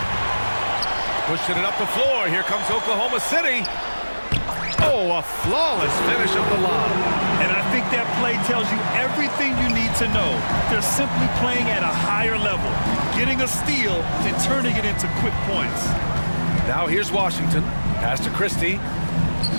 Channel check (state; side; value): inverted; both; correlation -1.00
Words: Pushing it up the floor. Here comes Oklahoma City. Oh, a flawless finish of the lob. And I think that play tells you everything you need to know. They're simply playing at a higher level, getting a steal and turning it into quick points. Now here's Washington. Pass to Christie.